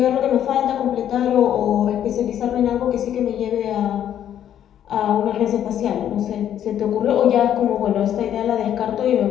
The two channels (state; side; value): quieter; right; 10.3 dB